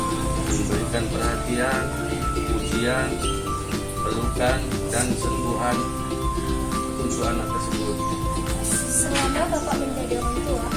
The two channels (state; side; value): identical; both; correlation 1.00